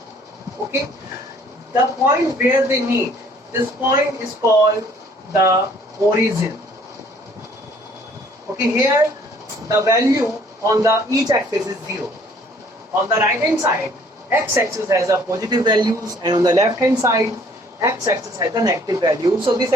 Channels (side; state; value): both; normal; correlation 0.58